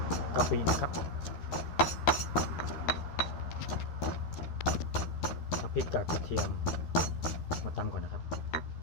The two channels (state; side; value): late; right; 13 ms